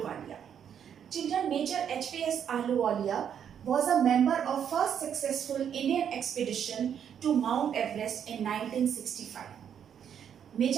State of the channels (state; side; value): quieter; left; 8.5 dB